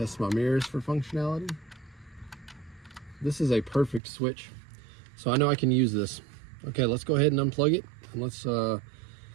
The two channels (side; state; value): left; drops out; at 4.0 s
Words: my mirrors for functionality. This is a perfect switch. So I know I can use this. Okay, let's go ahead and unplug it and let's